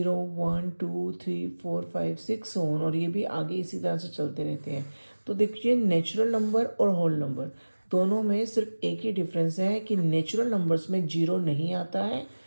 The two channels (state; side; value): inverted; both; correlation -1.00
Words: 1 2 3 4 5 6 ऑन, और ये भी आगे इसी तरह से चलते रहते हैं। तो देखिए, नेचुरल नंबर और होल नंबर दोनों में सिर्फ एक ही डिफरेंस है कि नेचुरल नंबर्स में जीरो नहीं आता है